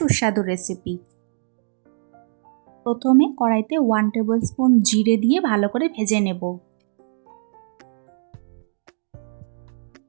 রেসিপি। প্রথমে কড়াইতে 1 টেবিল স্পুন জিরে দিয়ে ভালো করে ভেজে নেব।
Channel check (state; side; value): silent; left; 64 dB below the other